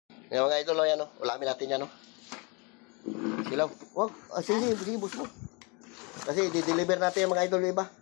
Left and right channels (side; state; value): right; quieter; 30.3 dB